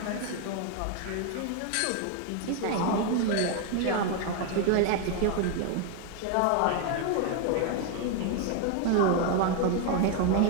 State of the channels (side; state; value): both; different; correlation 0.01